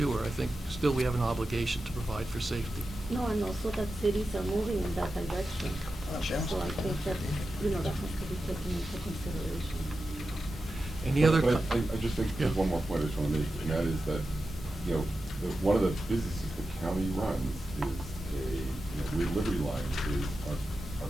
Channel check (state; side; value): normal; both; correlation 0.91